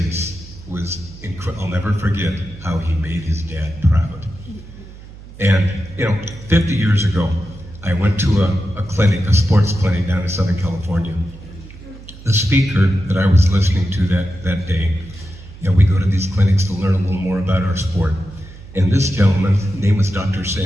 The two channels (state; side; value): noise; right; hum, 17 dB below the sound